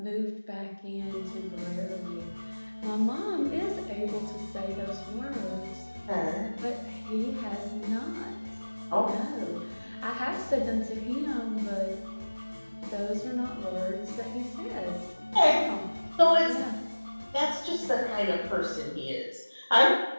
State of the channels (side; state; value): both; inverted; correlation -1.00